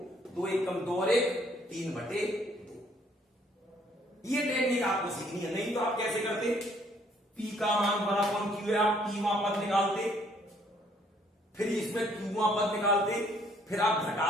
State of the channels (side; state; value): both; normal; correlation 0.64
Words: 2 1 कम 2 और 1 3/2। ये टेक्निक आपको सीखनी है, नहीं तो आप कैसे करते? P का मान बराबर Q है, आप P वहां पद निकालते, फिर इसमें Q वहां पद निकालते, फिर आप